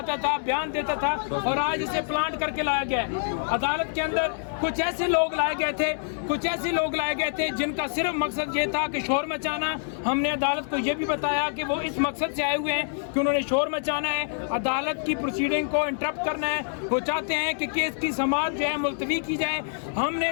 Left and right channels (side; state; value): right; silent; 61 dB below the other